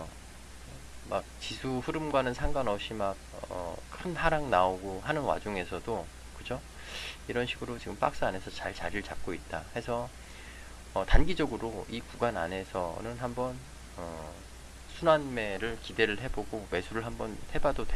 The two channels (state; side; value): identical; both; correlation 1.00